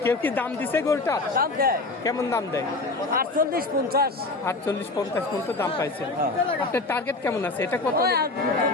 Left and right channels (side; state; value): right; quieter; 3.3 dB